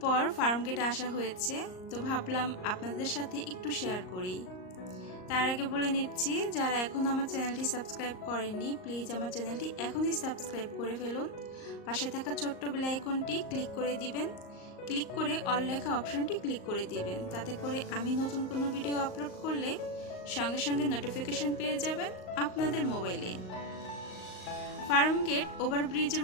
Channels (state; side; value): late; right; 38 ms